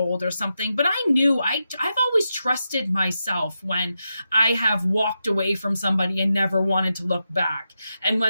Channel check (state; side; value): inverted; both; correlation -0.88